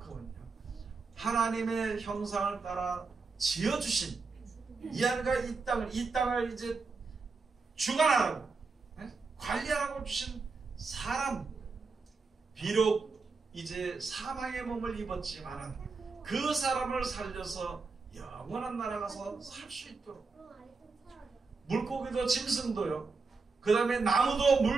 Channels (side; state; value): left; quieter; 4.3 dB